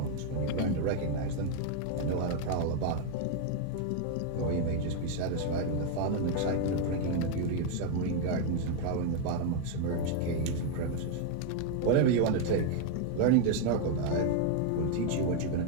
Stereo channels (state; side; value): different; both; correlation 0.00